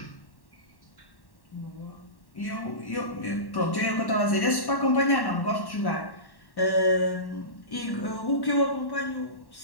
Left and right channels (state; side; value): late; right; 1.1 ms